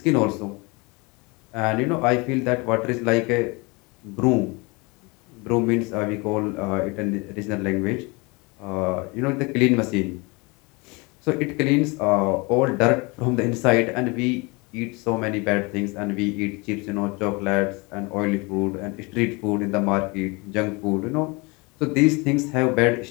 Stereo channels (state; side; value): quieter; right; 27.4 dB